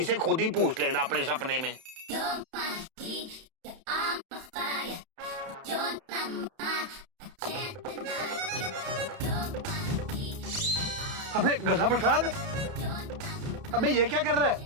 से खुद ही पूछ लेना अपने सपने में। अबे गधा प्रसाद, अबे ये क्या कर रहा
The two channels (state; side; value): late; left; 31 ms